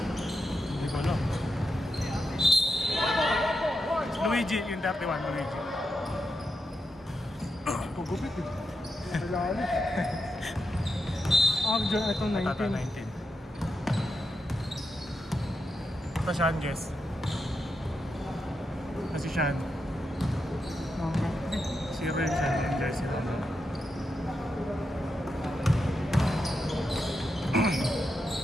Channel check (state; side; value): normal; both; correlation 0.85